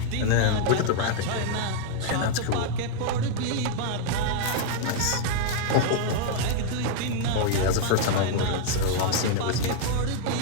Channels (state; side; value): different; both; correlation 0.00